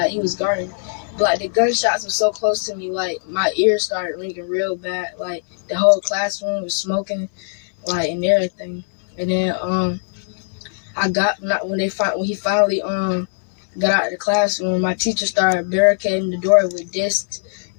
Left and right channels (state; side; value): silent; right; 65 dB below the other